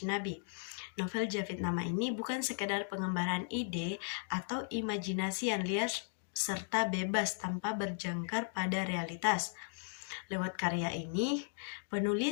Nabi. Novel Jafit Nama ini bukan sekedar pengembaraan ide atau imajinasi yang liar serta bebas tanpa berjangkar pada realitas. Lewat karya ini,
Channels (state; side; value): silent; right; digital silence